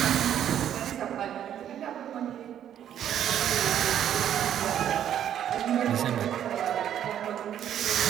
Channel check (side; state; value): left; quieter; 10.2 dB